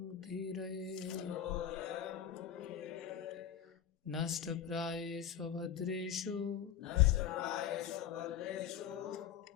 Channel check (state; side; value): quieter; right; 9.4 dB